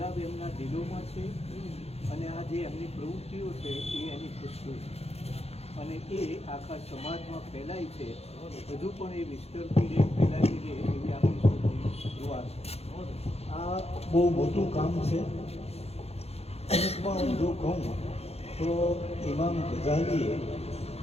એમના દિલોમાં છે, અને આ જે એમની પ્રવૃત્તિઓ છે એ એની ખુશીઓ છે, અને એ આખા સમાજમાં ફેલાય છે. હજુ પણ એ વિસ્તરતી રહે, ફેલાતી રહે એવી આપણી સૌની દુઆ છે. આ બહુ મોટું કામ છે. અમુકમાં હું જો કહું તો ઇમામ ગઝાલીએ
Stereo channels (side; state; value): right; late; 0.30 ms